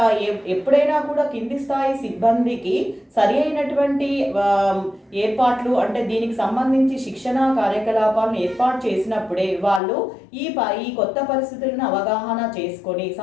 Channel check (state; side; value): drops out; right; at 9.8 s